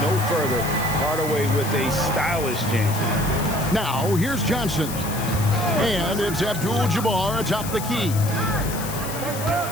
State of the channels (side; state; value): left; noise; hiss, 10 dB below the sound